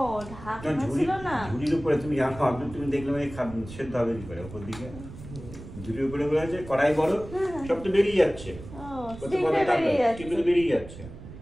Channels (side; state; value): right; noise; rumble, 14 dB below the sound